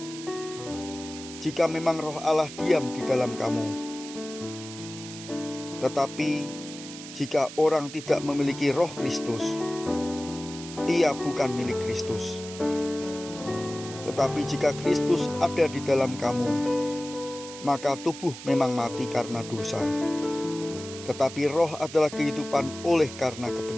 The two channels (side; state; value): right; noise; hiss, 13 dB below the sound